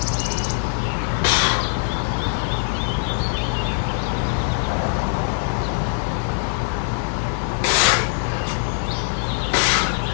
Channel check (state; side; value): silent; right; 63 dB below the other